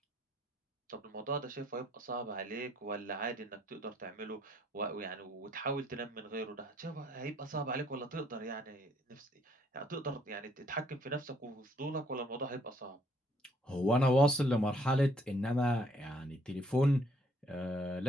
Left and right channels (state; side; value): normal; both; correlation 0.65